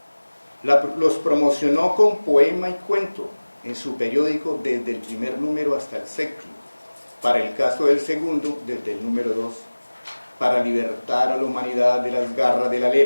Los promocionó con poema y cuento en su periódico desde el primer número hasta el séptimo, para el caso del segundo desde el número 2, para libertar a la humanidad de las garras de la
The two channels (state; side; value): inverted; both; correlation -1.00